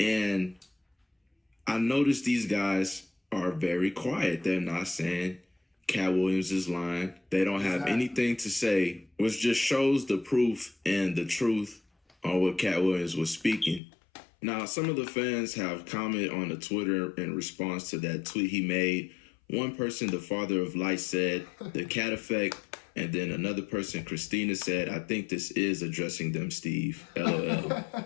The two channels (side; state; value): right; drops out; at 13.8 s